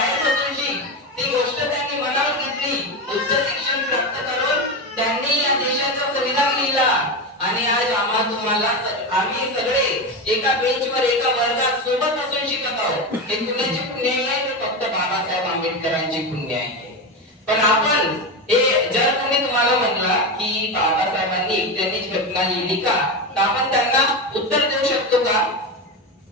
बसून शिक. ती गोष्ट त्यांनी मनावर घेतली, उच्च शिक्षण प्राप्त करून त्यांनी या देशाचा संविधान लिहिला आणि आज आम्ही सगळे एका बेंचवर एका वर्गात सोबत बसून शिकत आहोत. हे कुणाची पुण्य आहे? फक्त बाबासाहेब आंबेडकरांची पुण्य आहे. पण आपण हे जर कोणी तुम्हाला म्हणला की बाबासाहेबांनी एकट्यानेच घटना लिहिली का, तर आपण त्यांना उत्तर देऊ शकतो का?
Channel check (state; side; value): normal; both; correlation 0.17